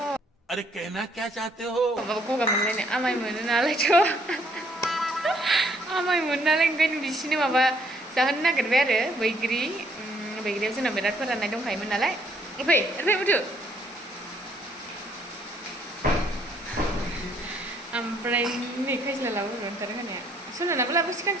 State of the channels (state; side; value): normal; both; correlation 0.67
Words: अरे कहना क्या चाहते हो? Goga mana ni, amai mana nalar tu, amai mana nalar kan di sini apa sahaja nak kerja baigri tu nak berat pernah naik dong kai mana nalar, apa betul? Amprai ni kai selalu lalu orang terang ya, so nak apa sih kan